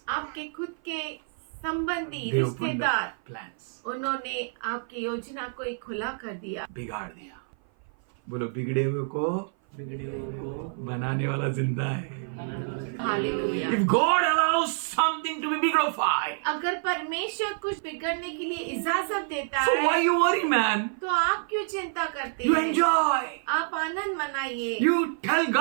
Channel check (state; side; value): silent; left; 55 dB below the other